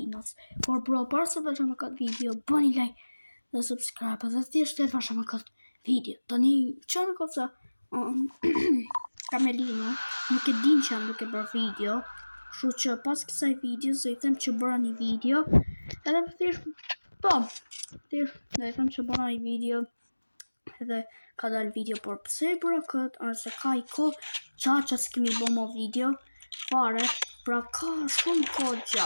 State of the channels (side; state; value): both; inverted; correlation -1.00